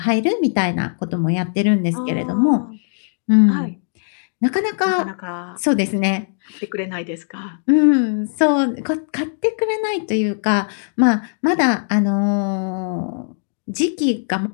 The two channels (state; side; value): silent; right; digital silence